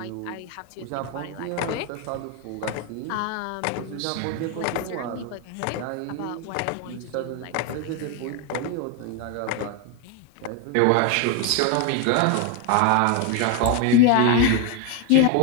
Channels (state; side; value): different; both; correlation 0.01